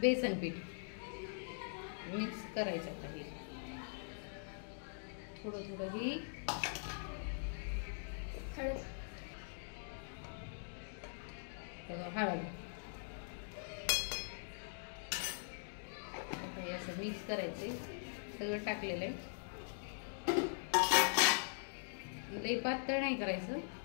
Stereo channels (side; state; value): right; silent; digital silence